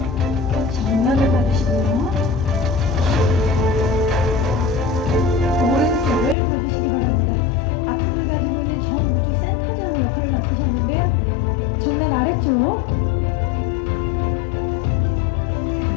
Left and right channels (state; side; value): drops out; right; at 6.4 s